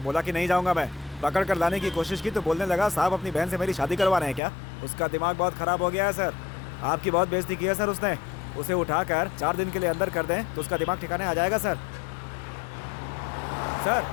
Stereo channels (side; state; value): right; drops out; at 4.4 s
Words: कि नहीं जाऊंगा मैं। पकड़ कर लाने की कोशिश की तो बोलने लगा साहब अपनी बहन से मेरी शादी करवा रहे हैं क्या? उसका दिमाग बहुत खराब हो गया है सर, आपकी बहुत बेइज्जती की है सर उसने। उसे उठाकर 4 दिन के लिए अंदर कर दें तो उसका दिमाग ठिकाने आ जाएगा सर। सर,